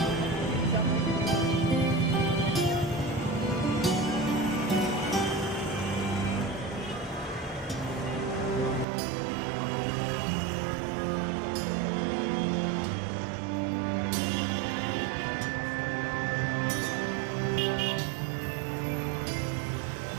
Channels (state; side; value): drops out; left; at 8.8 s